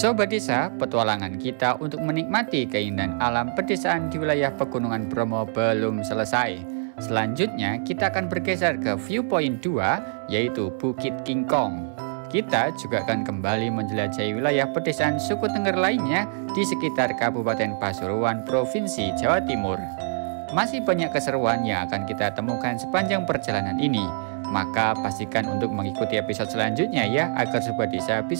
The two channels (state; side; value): silent; left; 62 dB below the other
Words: desa, petualangan kita untuk menikmati keindahan alam pedesaan di wilayah Pegunungan Bromo belum selesai. Selanjutnya kita akan bergeser ke viewpoint 2, yaitu Bukit King Kong. Kita juga akan kembali menjelajahi wilayah pedesaan suku Tengger lainnya di sekitar Kabupaten Pasuruan, Provinsi Jawa Timur. Masih banyak keseruan yang akan kita temukan sepanjang perjalanan ini. Maka pastikan untuk mengikuti episode selanjutnya ya, agar sobat desa